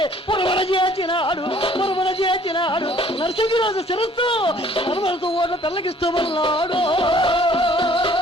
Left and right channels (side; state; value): both; normal; correlation 0.57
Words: పురమణ చేసినాడు. నరసింహరాజు శిరస్సు నర్మలతో ఓట్ల తెల్లగిస్తూ ఉన్నాడు.